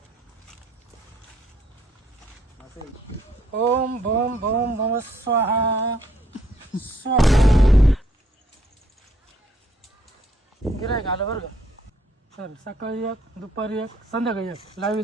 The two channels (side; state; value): both; normal; correlation 0.67